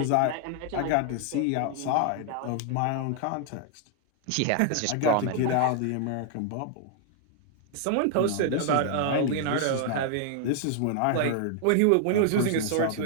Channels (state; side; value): different; both; correlation 0.00